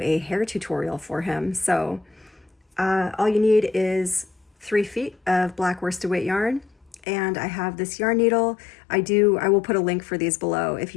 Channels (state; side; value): drops out; right; at 7.0 s